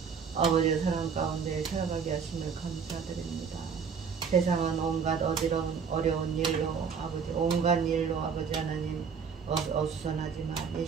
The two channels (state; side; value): quieter; left; 6.2 dB